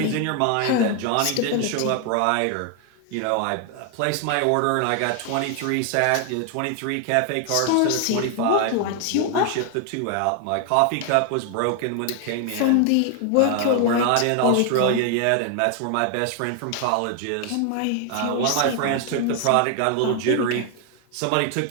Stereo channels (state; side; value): different; both; correlation 0.00